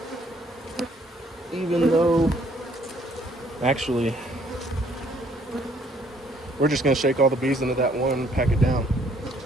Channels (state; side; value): normal; both; correlation 0.64